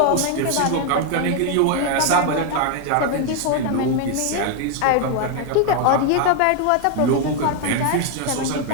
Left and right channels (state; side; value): different; both; correlation 0.01